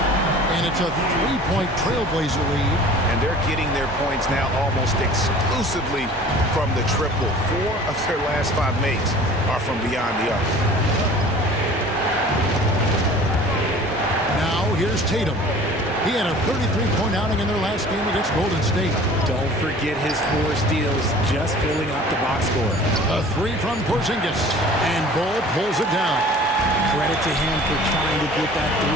And it's a 3-point Trailblazer lead. And they're getting their points now almost exclusively from the triple. 4 of their last 5 makes are from beyond the arc. Now here's Tatum. He had a 33-point outing in their last game against Golden State. Don't forget his 4 steals, just filling up the box score. A 3 from Porzingis. And Bol pulls it down. Credit to him for trying to get that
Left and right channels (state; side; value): normal; both; correlation 0.46